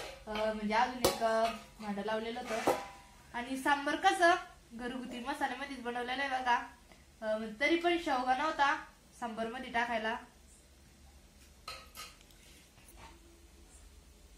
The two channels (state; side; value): identical; both; correlation 1.00